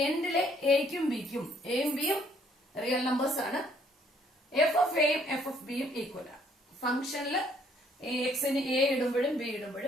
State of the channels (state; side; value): normal; both; correlation 0.65